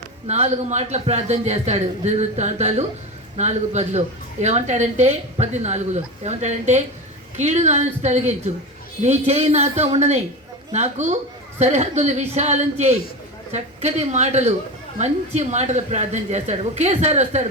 4 మాటలు ప్రార్థన చేస్తాడు. దినవృత్తాంతాలు 4:10 ఏమంటాడంటే 14 ఏమంటాడంటే, కీడు నా నుంచి తొలగించు, నీ చేయి నాతో ఉండని, నాకు సరిహద్దులు విశాలం చేయి. చక్కటి మాటలు, మంచి మాటలు ప్రార్థన చేస్తాడు. ఒకేసారి వస్తాడు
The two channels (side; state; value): both; normal; correlation 0.23